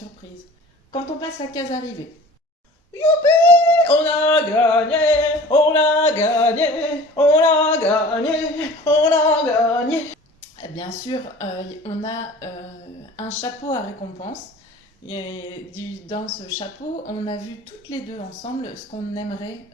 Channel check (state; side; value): normal; both; correlation 0.43